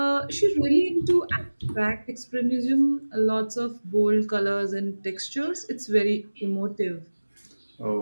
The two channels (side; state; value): both; inverted; correlation -1.00